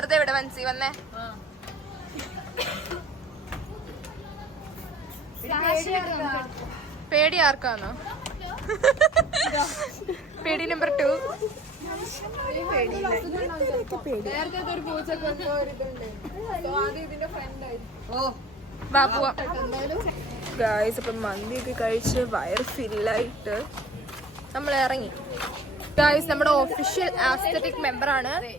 ഇവിടെ മനസ്സി വന്നേ. പേടി ആർക്കാന്നോ? പേടി നമ്പർ 2. ബാബുവ. ഗായ്സ്, ഇപ്പം മന്തിയൊക്കെ കഴിച്ച് വയർ ഫില്ലായിട്ട് നമ്മൾ ഇറങ്ങി. ഗായ്സ്, നമ്മുടെ ഒഫീഷ്യൽ ആസ്തെറ്റിക് മെമ്പറാണ്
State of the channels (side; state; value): both; normal; correlation 0.47